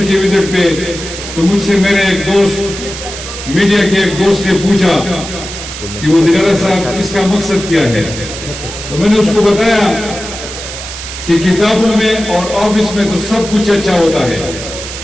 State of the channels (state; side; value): noise; right; hiss, 9 dB below the sound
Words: کی وزٹ پہ، تو مجھ سے میرے ایک دوست، میڈیا کے ایک دوست نے پوچھا کہ وزیر اعلیٰ صاحب اس کا مقصد کیا ہے؟ تو میں نے اس کو بتایا کہ کتابوں میں اور آفس میں تو سب کچھ اچھا ہوتا ہے،